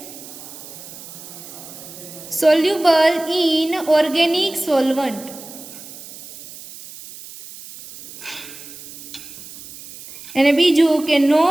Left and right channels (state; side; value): noise; right; hiss, 15 dB below the sound